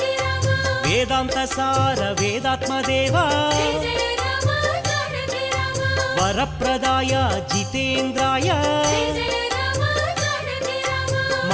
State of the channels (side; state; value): both; identical; correlation 1.00